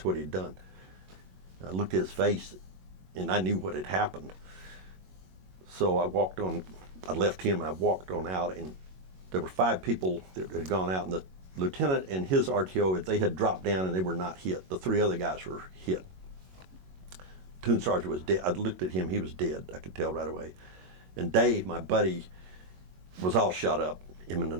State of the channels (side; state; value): left; late; 22 ms